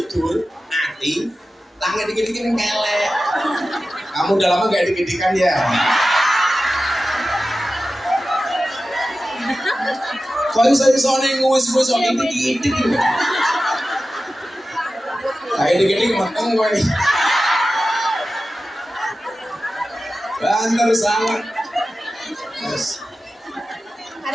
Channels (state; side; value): normal; both; correlation 0.94